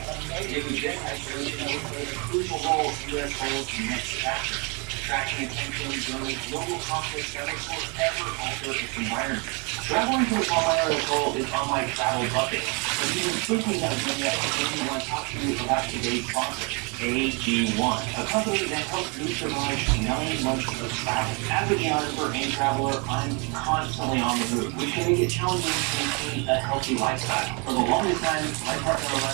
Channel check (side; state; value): left; quieter; 32.3 dB